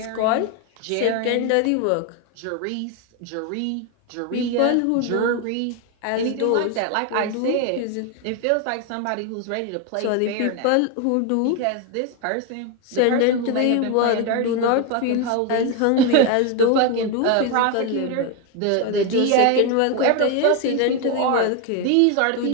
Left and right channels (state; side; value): different; both; correlation 0.01